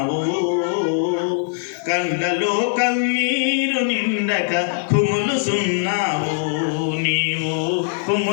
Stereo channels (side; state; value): right; silent; digital silence